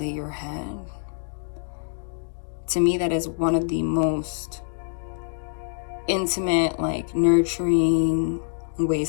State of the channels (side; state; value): right; silent; digital silence